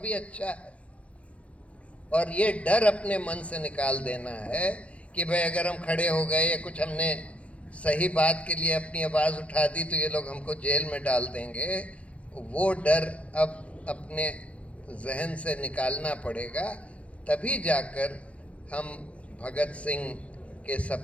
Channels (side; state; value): right; late; 0.063 ms